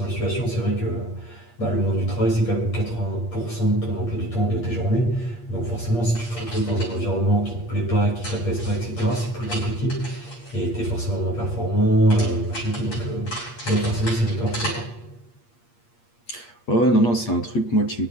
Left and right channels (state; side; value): late; right; 8.5 ms